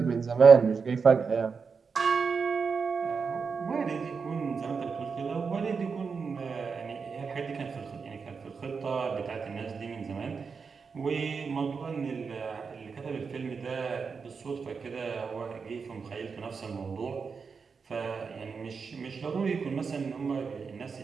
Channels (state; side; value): quieter; left; 5.4 dB